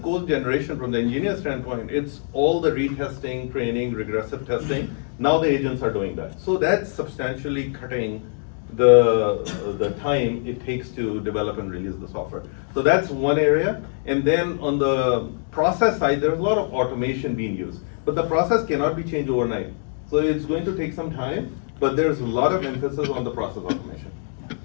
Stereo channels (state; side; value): silent; right; digital silence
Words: code generation from the engineer standpoint, it's all the retesting, training, regressive testing. Now the agents are doing that. So that's substantially cutting the time it takes to develop and release the software. So that's one area. And then on the process side, there's a lot of automation being used. But the process cannot be changed overnight. So it's going to take some time, but there's a lot of emphasis on the process automation.